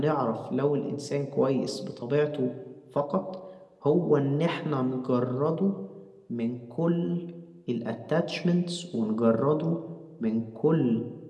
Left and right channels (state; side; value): identical; both; correlation 1.00